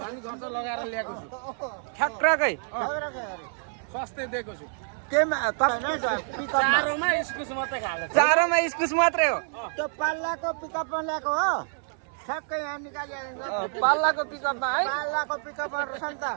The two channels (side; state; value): left; silent; 60 dB below the other